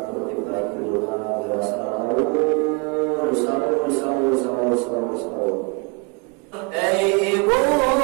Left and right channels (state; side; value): quieter; left; 31.5 dB